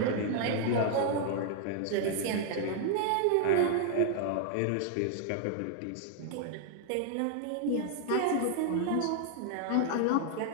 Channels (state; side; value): different; both; correlation 0.00